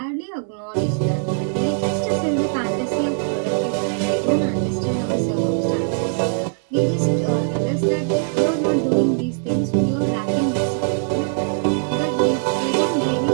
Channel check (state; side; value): silent; left; digital silence